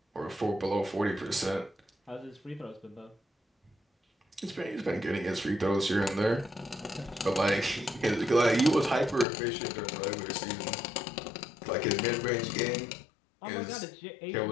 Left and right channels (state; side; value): drops out; right; at 9.2 s